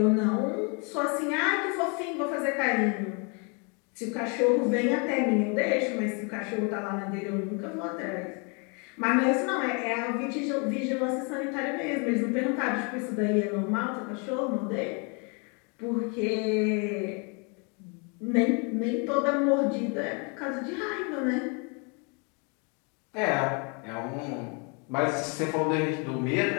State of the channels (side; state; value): right; quieter; 34.7 dB